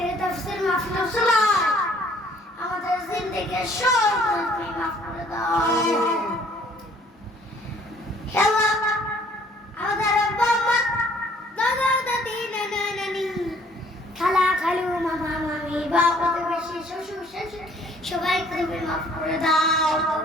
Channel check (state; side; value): normal; both; correlation 0.59